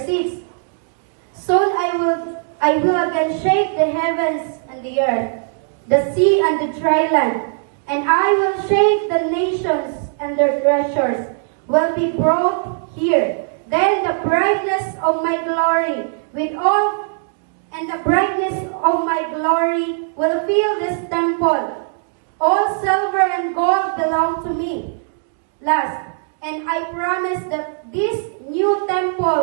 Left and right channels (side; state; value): left; silent; digital silence